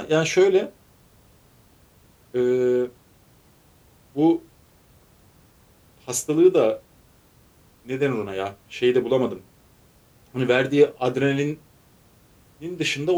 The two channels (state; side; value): identical; both; correlation 1.00